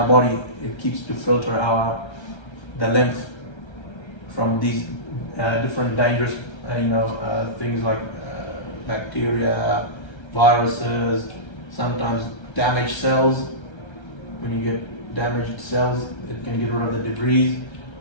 body. It keeps to filter the lymph from these different dangerous, things like bacteria, viruses, sometimes damaged cells. When you get damaged cells, it can get rid of the debris,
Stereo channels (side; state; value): right; late; 1.3 ms